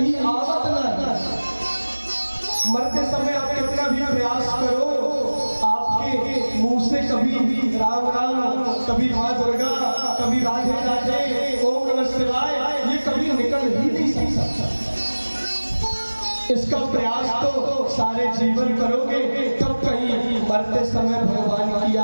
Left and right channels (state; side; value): inverted; both; correlation -1.00